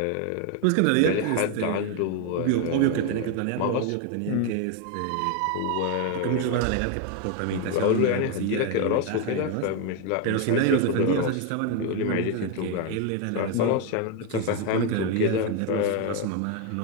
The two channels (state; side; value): different; both; correlation 0.01